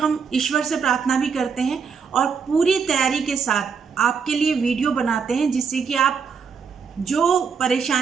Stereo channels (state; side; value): quieter; left; 6.0 dB